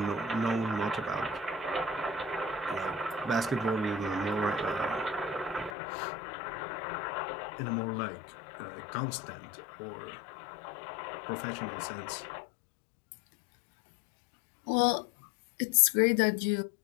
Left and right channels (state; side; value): drops out; right; at 5.8 s